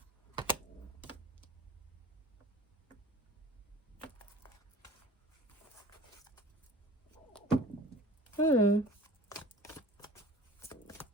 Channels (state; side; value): normal; both; correlation 0.43